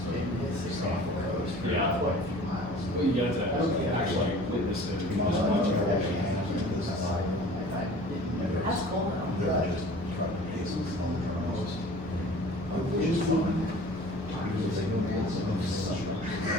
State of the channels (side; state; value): both; normal; correlation 0.45